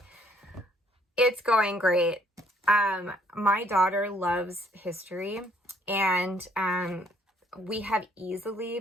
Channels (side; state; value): both; normal; correlation 0.64